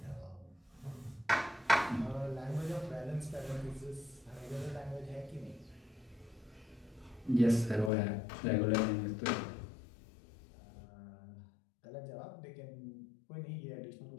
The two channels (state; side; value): drops out; right; at 7.9 s